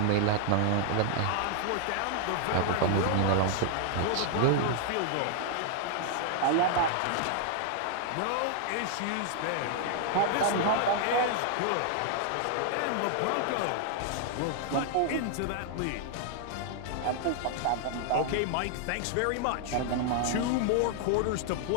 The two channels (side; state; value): both; different; correlation 0.00